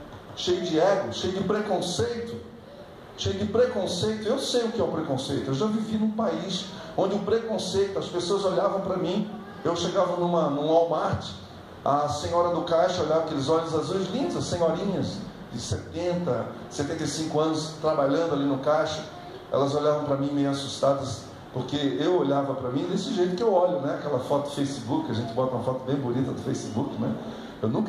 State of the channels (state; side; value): identical; both; correlation 1.00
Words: cheio de preconceito. Eu sei o que é o preconceito. Eu já vivi num país onde o preconceito, as pessoas olhavam para mim. Eu chegava num Walmart, a senhora do caixa olhava aqueles olhos azuis lindos, as senhorinhas de 70, 75 anos trabalhando ali no caixa. Elas olhavam para mim meio assustadas, porque eu olhava para mim desse jeito que eu olho, né? Aquela foto do Facebook, a gente bota uma foto bem bonita do Facebook, né? Eu